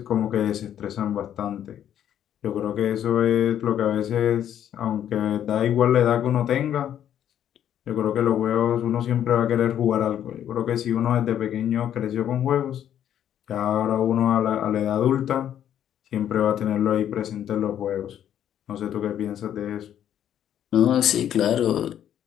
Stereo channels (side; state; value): right; quieter; 10.3 dB